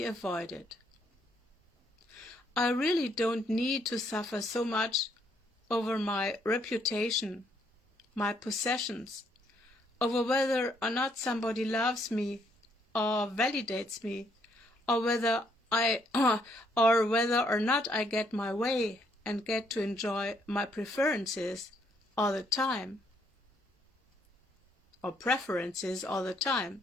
avoided. I really don't need to suffer so much over my reputation, my possessions, over whether or not somebody loves me or validates me, or whether or not I get my way and get to enjoy my preferences all the time, or preferences all the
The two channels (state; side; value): normal; both; correlation 0.70